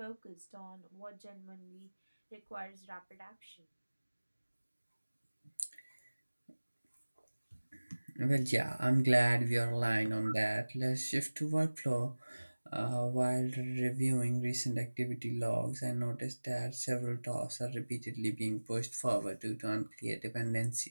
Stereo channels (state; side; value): inverted; both; correlation -1.00